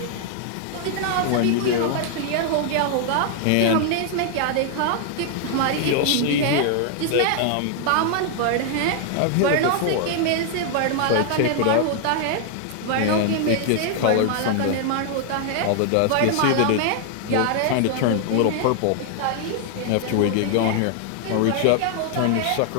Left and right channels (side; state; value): both; different; correlation 0.00